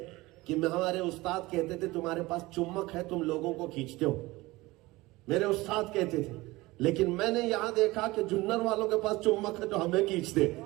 کہ ہمارے استاد کہتے تھے تمہارے پاس چمک ہے، تم لوگوں کو کھینچتے ہو، میرے استاد کہتے تھے، لیکن میں نے یہاں دیکھا کہ جنر والوں کے پاس چمک ہے جو ہمیں کھینچتے،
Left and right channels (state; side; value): quieter; left; 20.6 dB